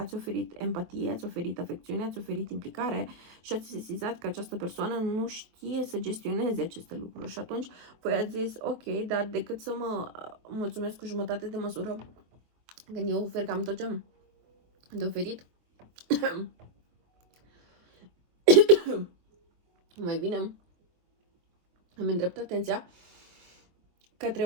oferit empatie, ați oferit afecțiune, ați oferit implicare și ați sesizat că această persoană nu știe să gestioneze aceste lucruri. Și atunci voi ați zis, ok, dar decât să mă mulțumesc cu jumătate de măsură, când eu ofer cam tot ce am de oferit, mai bine îmi îndrept atenția către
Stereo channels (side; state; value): left; late; 24 ms